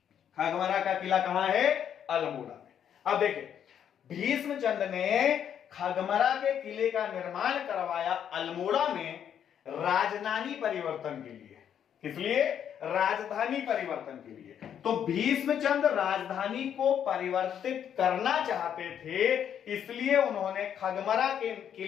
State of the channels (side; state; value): right; quieter; 9.0 dB